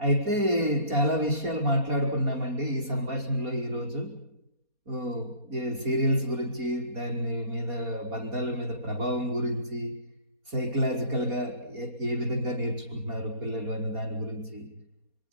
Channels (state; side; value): late; left; 4.2 ms